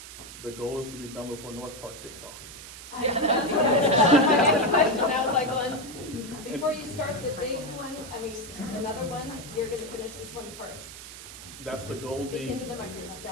The goal is to be done before North Park kicks off. Yeah, that's my next question. I was like, well, before you start the big one, another one, you're gonna finish this one first. That's the goal. Speak into the microphone. No,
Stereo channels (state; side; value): noise; right; hiss, 13 dB below the sound